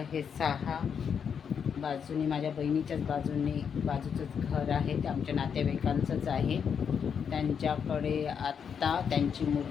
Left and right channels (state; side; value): quieter; right; 7.1 dB